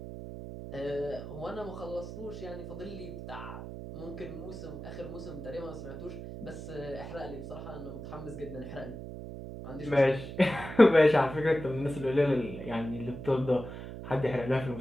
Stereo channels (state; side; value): noise; right; hum, 9 dB below the sound